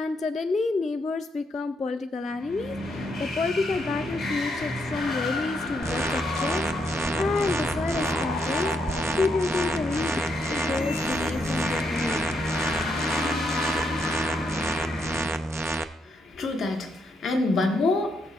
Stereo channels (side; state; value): both; normal; correlation 0.77